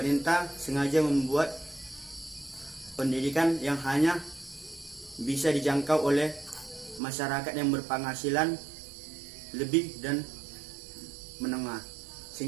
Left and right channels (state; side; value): drops out; left; at 7.0 s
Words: sengaja membuat pendidikan yang hanya bisa dijangkau oleh masyarakat yang berpenghasilan lebih dan menengah,